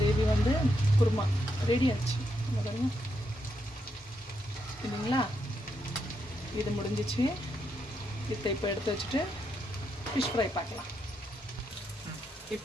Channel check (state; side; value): normal; both; correlation 0.81